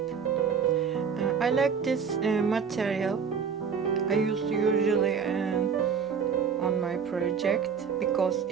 I like this material. I use usually on my project because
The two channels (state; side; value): quieter; left; 6.5 dB